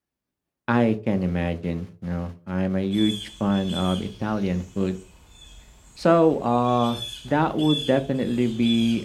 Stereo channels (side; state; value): both; identical; correlation 1.00